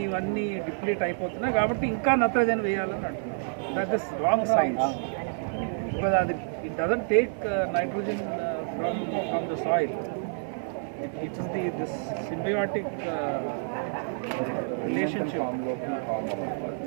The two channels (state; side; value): silent; left; digital silence